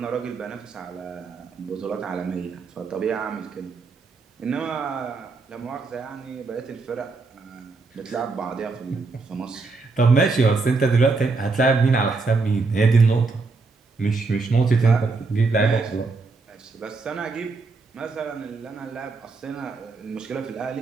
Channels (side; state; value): left; quieter; 4.0 dB